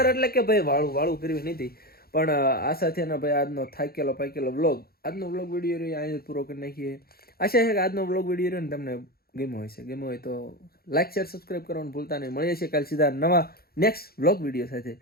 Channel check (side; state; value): right; late; 0.44 ms